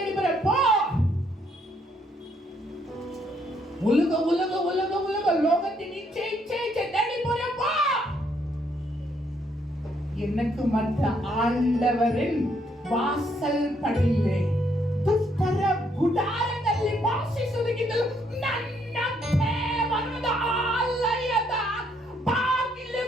போறப்போ, உலக உலக உலக உலக லோகத்தின் இச்சை தேடி போறப்போ, எனக்கு மற்ற ஆண்டவரின் வாசல் படியிலே ದುಷ್ಟರ ಗುಡಾರದಲ್ಲಿ ವಾಸಿಸುವುದಕ್ಕಿಂತಲೂ ನನ್ನ ದೇವರ ಆಲಯದ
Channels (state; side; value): normal; both; correlation 0.71